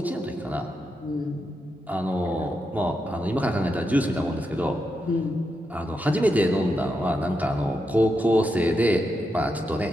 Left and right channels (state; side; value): normal; both; correlation 0.85